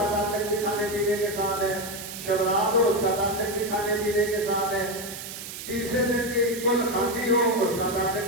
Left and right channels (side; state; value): right; noise; hiss, 10 dB below the sound